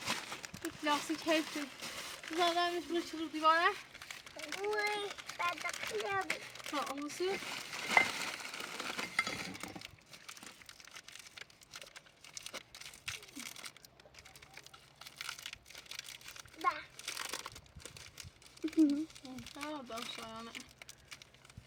لاستیک حیفه زادمش رو دیواره حسین داشتم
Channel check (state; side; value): identical; both; correlation 1.00